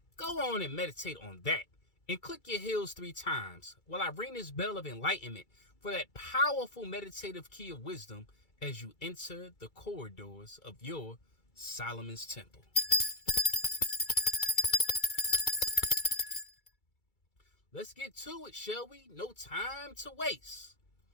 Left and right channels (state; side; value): late; right; 2.3 ms